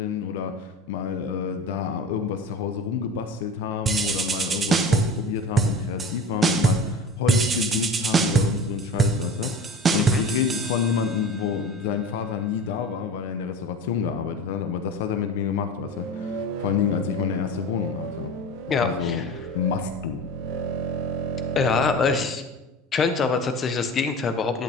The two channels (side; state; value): both; normal; correlation 0.34